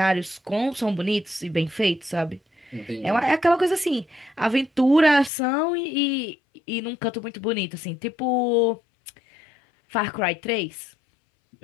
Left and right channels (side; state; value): right; drops out; at 5.3 s